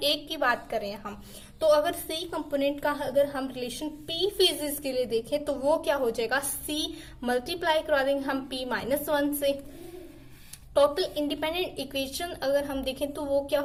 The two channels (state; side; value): identical; both; correlation 1.00